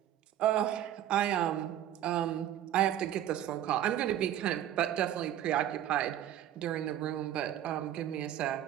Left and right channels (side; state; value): left; quieter; 11.7 dB